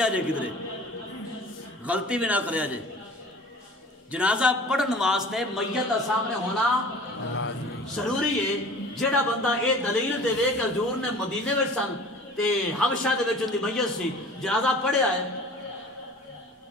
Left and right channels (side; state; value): both; normal; correlation 0.44